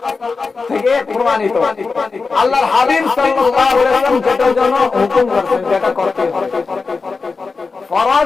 থেকে প্রমাণিত, আল্লাহর হাবিব সাল্লাল্লাহু আলাইহি ওয়াসাল্লাম যেটার জন্য হুকুম করেছেন যেটা করতে হবে।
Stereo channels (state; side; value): quieter; right; 4.4 dB